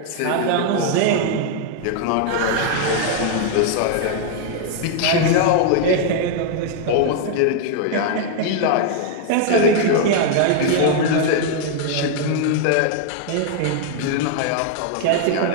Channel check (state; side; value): different; both; correlation 0.00